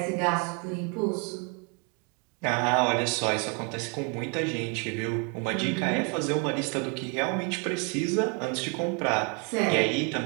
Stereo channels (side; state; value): left; quieter; 34.0 dB